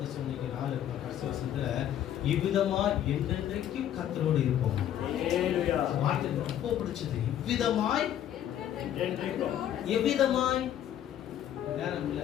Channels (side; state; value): right; quieter; 10.9 dB